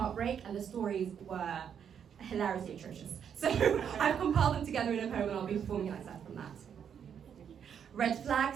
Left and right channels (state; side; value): quieter; left; 8.0 dB